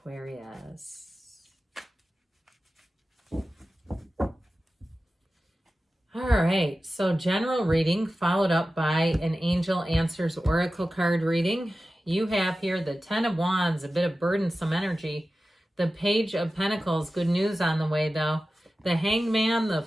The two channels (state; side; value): normal; both; correlation 0.94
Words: All right, so general reading followed up by an Angel Answers Oracle card reading. You have here the Ten of Wands, a bit of burdensome energy. The Page of Pentacles, good news on the way though. The Hangman, the